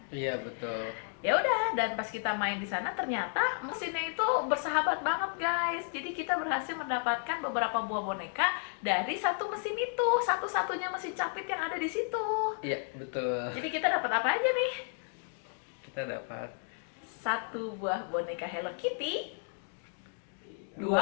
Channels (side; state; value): right; silent; 56 dB below the other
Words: Iya, betul. Ya udah, dan pas kita main di sana ternyata mesinnya itu bersahabat banget guys. Jadi kita berhasil mendapatkan beberapa buah boneka dari satu mesin itu, satu-satunya mesin capit yang ada di situ. Iya, betul. Jadi kita dapat apa aja nih? Kita dapat Satu buah boneka Hello Kitty, 2,